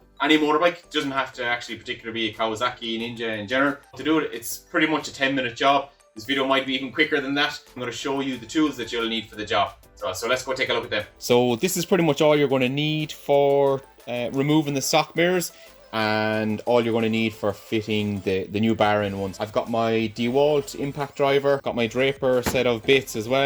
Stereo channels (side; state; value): both; identical; correlation 1.00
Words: any motorbike. It doesn't have to actually particularly be a Kawasaki Ninja in general. To do it, it's pretty much a 10-minute job. This video might be even quicker than that. I'm going to show you the tools that you'll need for the job. So let's go take a look at them. So this is pretty much all you're going to need for removing the stock mirrors, and all you're going to need for fitting the new bar end ones. I've got my DeWalt impact driver, got my Draper set of bits as